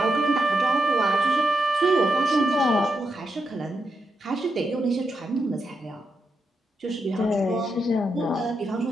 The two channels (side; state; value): both; normal; correlation 0.86